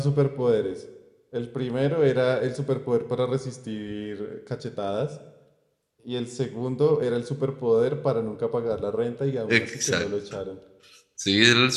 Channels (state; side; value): identical; both; correlation 1.00